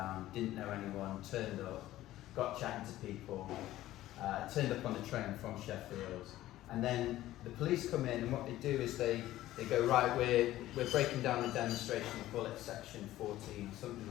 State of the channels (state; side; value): quieter; right; 15.0 dB